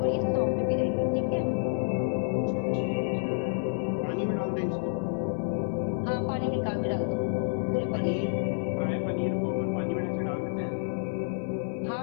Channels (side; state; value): right; silent; 59 dB below the other